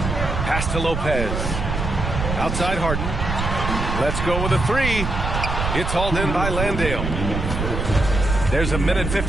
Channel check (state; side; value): noise; right; rumble, 3 dB below the sound